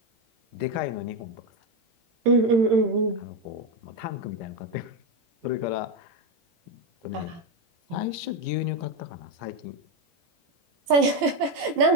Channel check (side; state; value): left; late; 18 ms